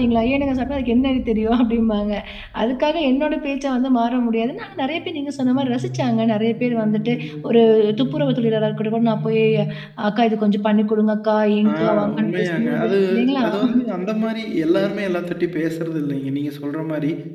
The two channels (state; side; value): identical; both; correlation 1.00